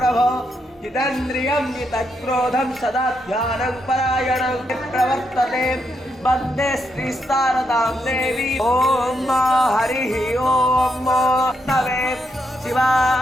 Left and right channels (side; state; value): both; normal; correlation 0.80